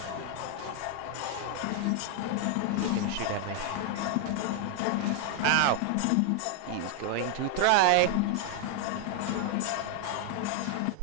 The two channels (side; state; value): both; different; correlation 0.00